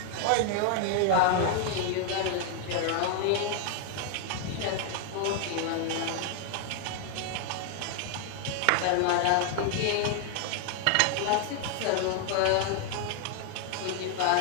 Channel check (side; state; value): both; different; correlation 0.00